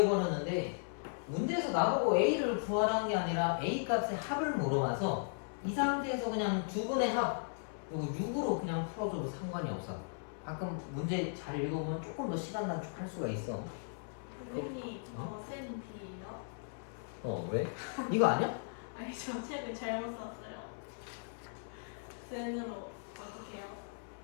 문제에서 나보고 A를 구하라는 게 아니라 A 값의 합을 물어봐서 이 상태에서 그냥 두 분의 합, 이거 6으로 그냥 풀어줘도 상관이 없어. 가끔 문제 잘 읽어보면 조금 더 시간 단축할 수가 있어. 선생님, 어? 저 쌤이에요? 왜? 이거 아니야? 아니, 저 책을 잘못 샀어요. 쌤으로 어떻게 해요?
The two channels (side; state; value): right; silent; 53 dB below the other